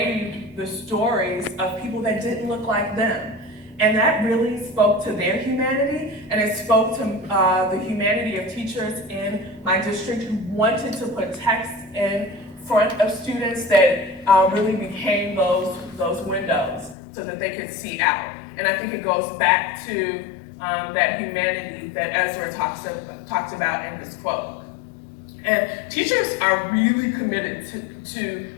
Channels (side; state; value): right; drops out; at 16.9 s